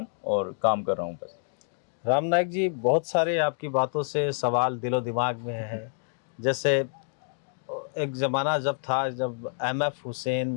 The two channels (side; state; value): right; silent; digital silence